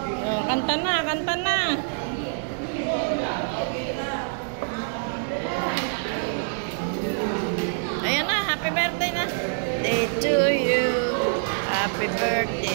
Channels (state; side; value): silent; left; digital silence